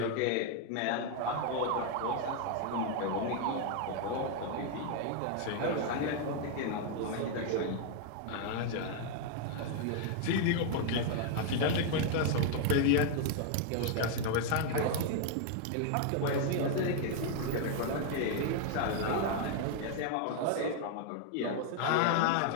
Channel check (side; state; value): both; different; correlation 0.00